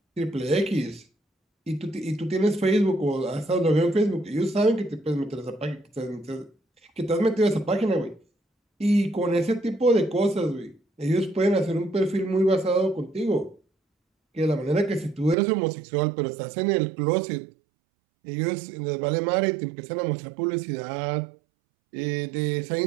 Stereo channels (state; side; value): drops out; left; at 15.4 s